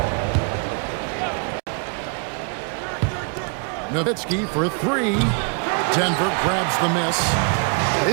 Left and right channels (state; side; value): quieter; left; 36.9 dB